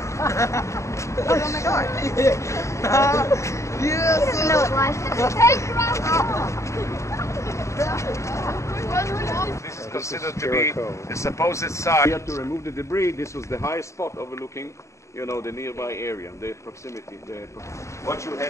Oh my God. Yes. He doesn't know what life is. This is considered to be the supposed site. We had to remove the debris. This was the highest spot overlooking, you know, the nearby area, the proximity. Watch your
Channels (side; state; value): right; late; 0.14 ms